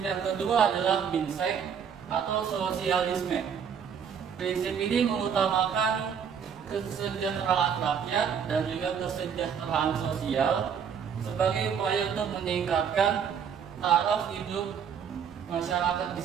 yang kedua adalah Minsen atau sosialisme. Prinsip ini mengutamakan kesejahteraan rakyat dan juga kesejahteraan sosial sebagai upaya untuk meningkatkan taraf hidup masyarakat di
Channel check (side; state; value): left; quieter; 7.5 dB